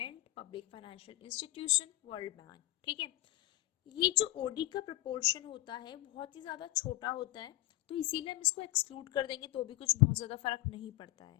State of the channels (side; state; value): right; quieter; 17.6 dB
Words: public financial institution, world bank। ठीक है, ये जो OD का proportion होता है बहुत ही ज़्यादा छोटा होता है, तो इसीलिए हम इसको एक्सक्लूड कर देंगे तो भी कुछ बहुत ज़्यादा फर्क नहीं पड़ता है।